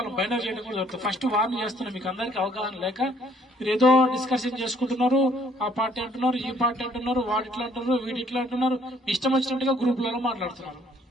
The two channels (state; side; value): normal; both; correlation 0.63